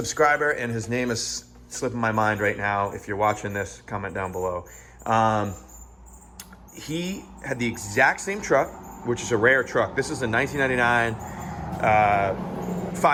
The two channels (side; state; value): both; identical; correlation 1.00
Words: and his name is slipping my mind right now. If you're watching this, comment down below. He had the exact same truck, which is a rare truck. This is a 1999